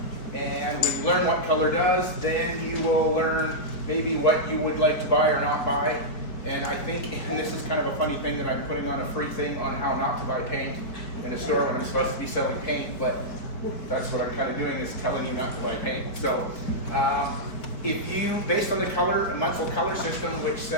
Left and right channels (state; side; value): late; right; 4.4 ms